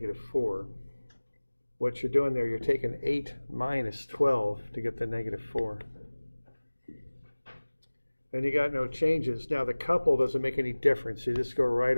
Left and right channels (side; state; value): both; inverted; correlation -1.00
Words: What you're doing there, you're taking 8 minus 12 to get the -4. And you got no changes. Now the couple doesn't make any difference. You just go right